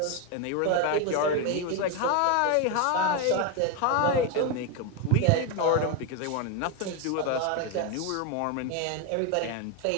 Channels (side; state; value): both; different; correlation 0.02